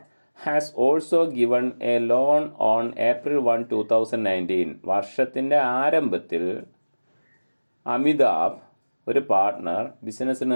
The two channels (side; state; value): both; inverted; correlation -1.00